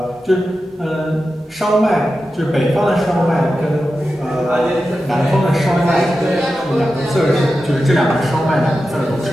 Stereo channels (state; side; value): normal; both; correlation 0.91